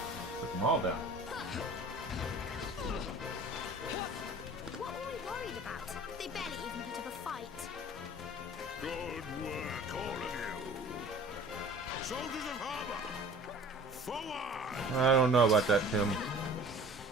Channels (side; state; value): both; normal; correlation 0.45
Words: All down. What were we worried about? They barely even put up a fight. Good work, all of you. Soldiers of Harbor, forward! I don't know about that, Tim.